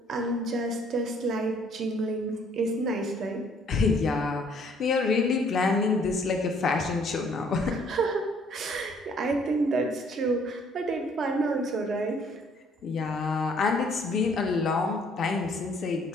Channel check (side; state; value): both; normal; correlation 0.62